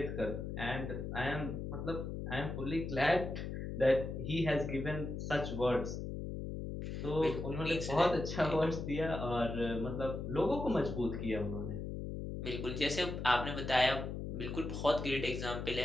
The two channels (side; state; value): left; noise; hum, 5 dB below the sound